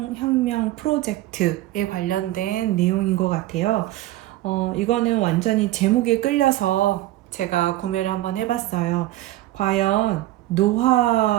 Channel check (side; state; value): left; quieter; 16.0 dB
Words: 프로젝트에 관련된 내용인 것 같아요. 이거는 완전히 제목에 끌려서 제가 구매를 한번 해봤어요. 과연